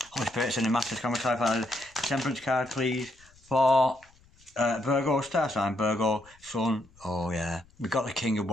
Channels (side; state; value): left; noise; rumble, 28 dB below the sound